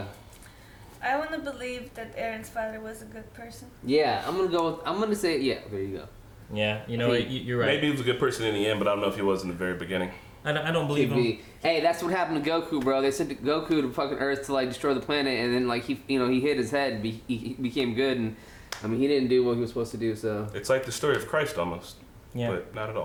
want to believe that Eren's father was a good person. yeah, I'm gonna say, yeah, there you go. Yeah, you know what? You're right. Maybe he was a good person in the end, but I don't know if he was in the very beginning. I don't believe Could him. be. Hey, that's what happened to Goku, bro. They sent Goku to fucking Earth to like destroy the planet, and then like he hit his head, and he became good, and I mean he didn't do what he was supposed to do. So It's like the story of Christ almost, Yeah. but not at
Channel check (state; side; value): identical; both; correlation 1.00